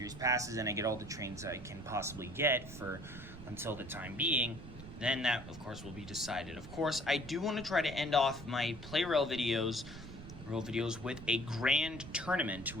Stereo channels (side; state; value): right; noise; rumble, 13 dB below the sound